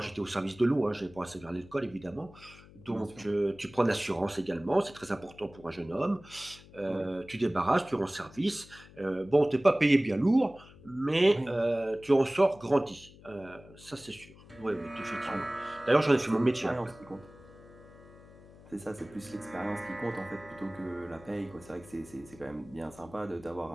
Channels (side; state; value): left; noise; hum, 21 dB below the sound